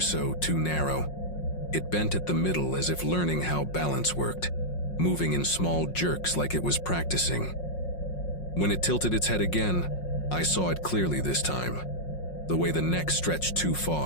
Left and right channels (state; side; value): late; right; 5.5 ms